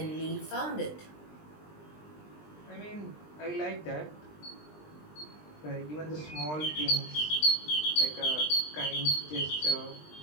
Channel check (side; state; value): right; late; 20 ms